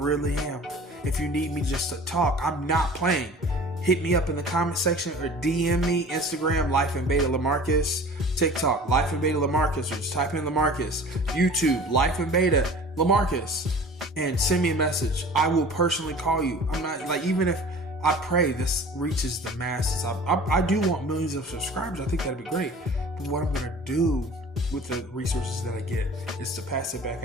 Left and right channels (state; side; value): normal; both; correlation 0.43